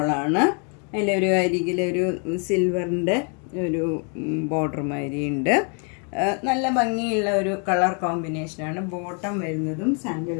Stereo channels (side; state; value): right; quieter; 38.9 dB